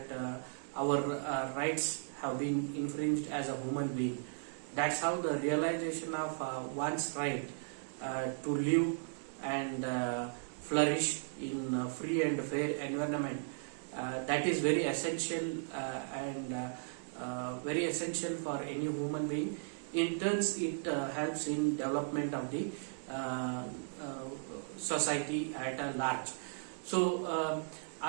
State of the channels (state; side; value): silent; left; digital silence